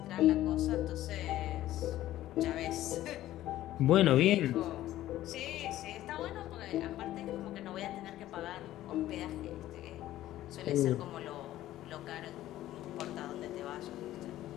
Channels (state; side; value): quieter; right; 14.2 dB